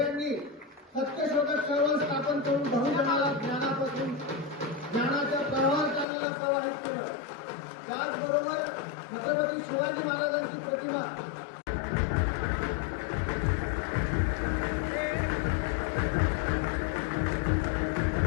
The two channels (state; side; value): drops out; right; at 6.1 s